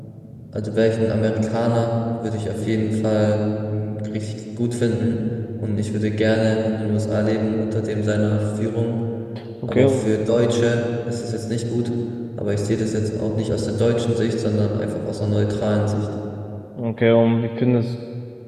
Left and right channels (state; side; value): identical; both; correlation 1.00